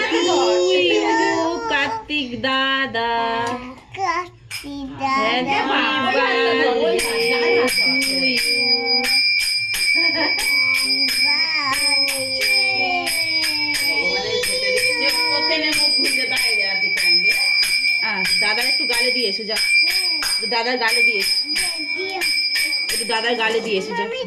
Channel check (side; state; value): both; identical; correlation 1.00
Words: কার্তিক দাদা, দাদার একটু গালে দিয়ে এসো, যা দাদার গালে দিয়ে এসো, একটু দাদার গালে দিয়ে এসো, যা